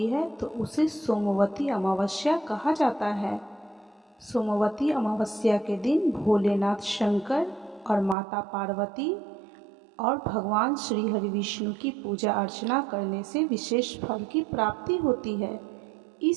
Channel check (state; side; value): drops out; left; at 8.2 s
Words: है तो उसे सोमवती अमावस्या कहा जाता है। सोमवती अमावस्या के दिन भोलेनाथ शंकर और माता पार्वती और भगवान श्री हरि विष्णु की पूजा अर्चना करने से विशेष फल की प्राप्ति होती है।